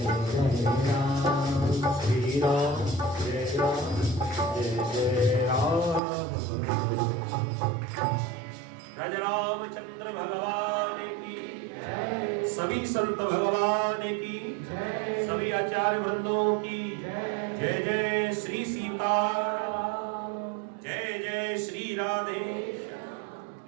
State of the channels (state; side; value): drops out; left; at 6.0 s